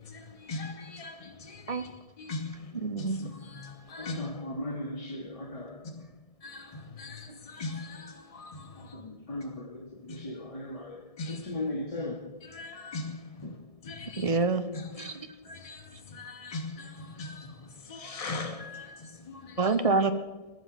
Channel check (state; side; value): late; right; 1.6 ms